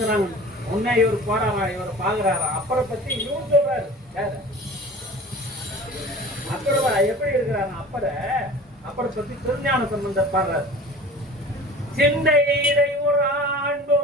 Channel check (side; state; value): both; normal; correlation 0.41